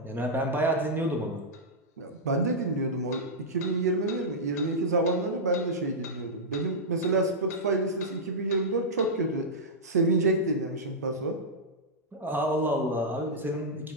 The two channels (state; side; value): normal; both; correlation -0.09